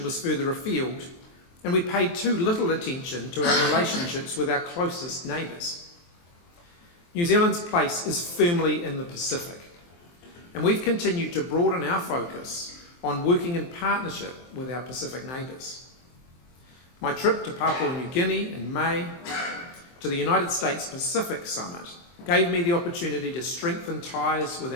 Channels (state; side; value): late; right; 23 ms